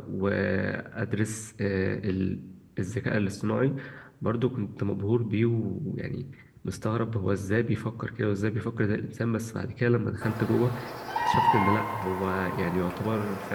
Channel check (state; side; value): identical; both; correlation 1.00